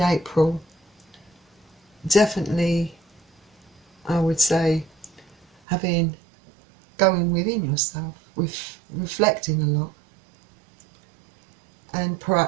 definitely I would say going within yourself, reflecting a lot. And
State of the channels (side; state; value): left; drops out; at 5.5 s